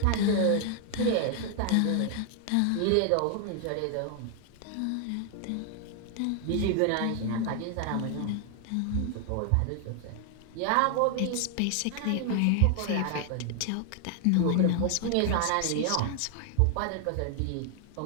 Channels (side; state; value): both; different; correlation 0.00